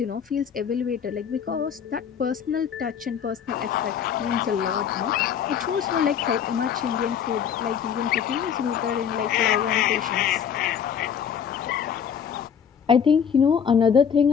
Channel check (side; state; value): right; quieter; 7.9 dB